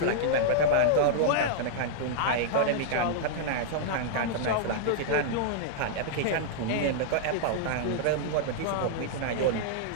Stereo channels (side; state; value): both; different; correlation -0.01